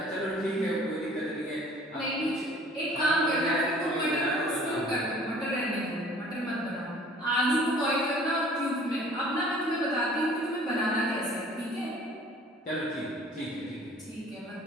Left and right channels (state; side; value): normal; both; correlation 0.51